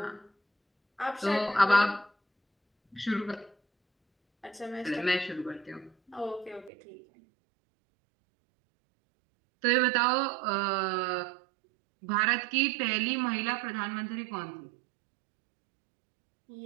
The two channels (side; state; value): left; drops out; at 6.7 s